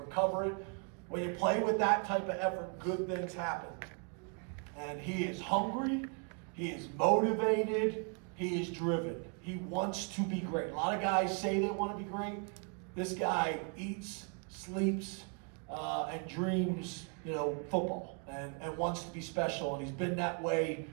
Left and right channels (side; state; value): left; quieter; 38.9 dB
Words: it. When you play with that type of effort, good things happen. And he is hungry, he is motivated, he is driven. He wants to be great. A lot of guys say they want to be great. This guy eats, sleeps, and dreams, football and wants to be special. And he's been that way